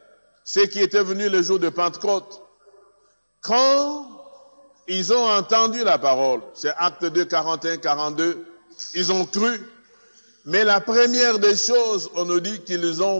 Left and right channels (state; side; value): inverted; both; correlation -1.00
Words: ceux qui étaient venus le jour de Pentecôte, quand ils ont entendu la parole, c'est Actes 2, 41, 42, ils ont cru. Mais la première des choses, on nous dit qu'ils